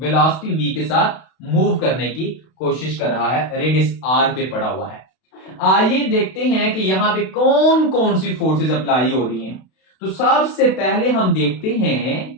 v के साथ मूव करने की कोशिश कर रहा है, रेडियस r पे पड़ा हुआ है। आइए देखते हैं कि यहां पे कौन कौन सी फोर्सेस अप्लाई हो रही हैं। तो सबसे पहले हम देखते हैं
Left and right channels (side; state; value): right; late; 32 ms